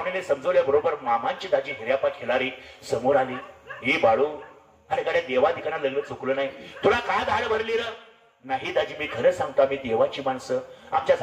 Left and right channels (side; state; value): both; identical; correlation 1.00